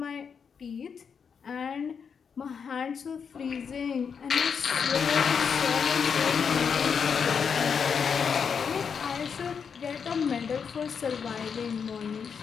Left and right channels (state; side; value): quieter; right; 6.5 dB